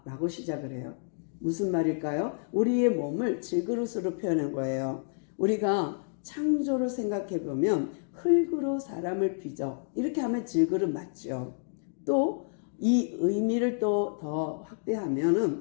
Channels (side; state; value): right; silent; digital silence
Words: 라고 시작을 해요. 무슨 말일까요? 우리의 몸을 질그릇으로 표현한 거예요. 우리가 창조를 생각해 보면 흙으로 사람을 빚어 이렇게 하면 질그릇 맞죠. 또 이 의미를 또 더